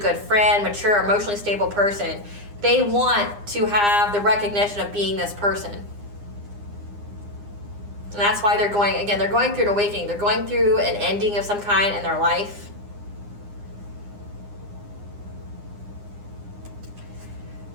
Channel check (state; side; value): late; left; 9.8 ms